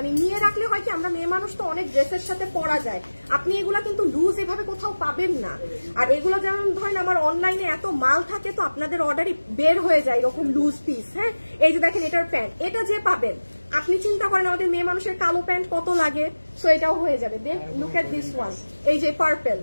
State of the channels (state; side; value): inverted; both; correlation -1.00